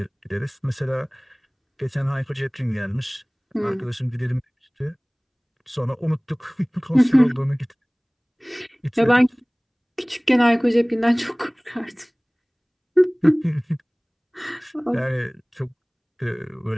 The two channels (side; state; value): both; identical; correlation 1.00